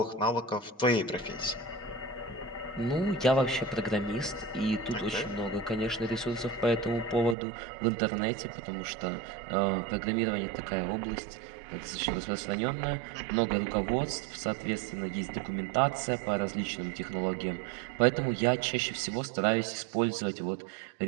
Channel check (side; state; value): left; drops out; at 7.4 s